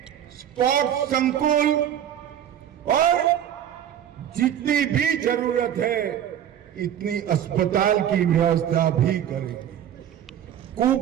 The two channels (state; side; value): quieter; left; 10.2 dB